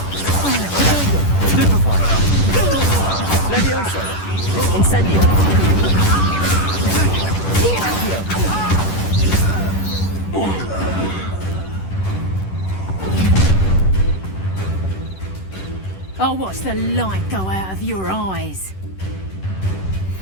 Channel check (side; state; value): right; late; 10 ms